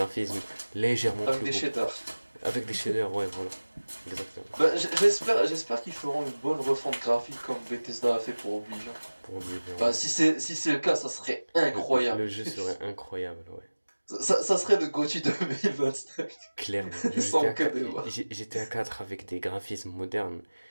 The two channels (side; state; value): both; inverted; correlation -1.00